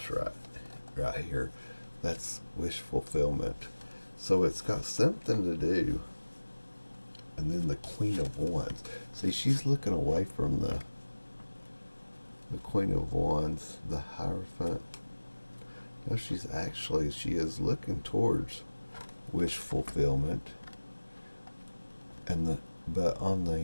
right here, that's wish fulfillment. So it's got something to do. And then the Queen of Wands. See, she's looking away from the Queen of Wands, the Hierophant. No, she is looking towards wish fulfillment. But on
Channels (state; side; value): inverted; both; correlation -1.00